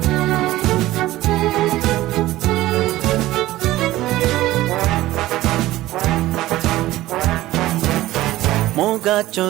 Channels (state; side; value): quieter; left; 16.3 dB